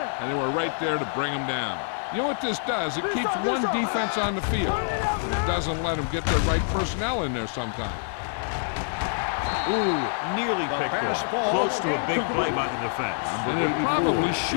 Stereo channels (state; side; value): silent; right; digital silence